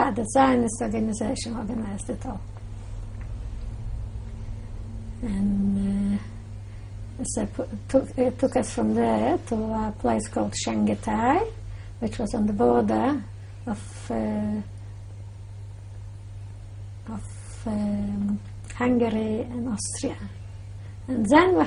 the Zionist organization, organized it all. And so it took us from there to a place called Shanghai, which was on the border of Hungary and Austria. And then we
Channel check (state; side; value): identical; both; correlation 1.00